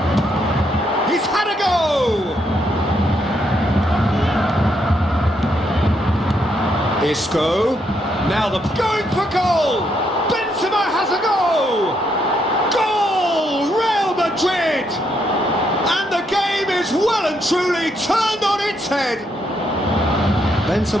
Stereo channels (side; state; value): both; normal; correlation 0.76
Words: He's had a go! Isco. Now the going for goal! Benzema has a go! Goal! Real Madrid! And the game is well and truly turned on its head.